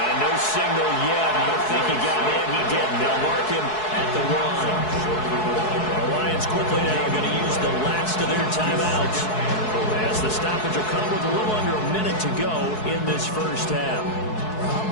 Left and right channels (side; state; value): right; late; 4.7 ms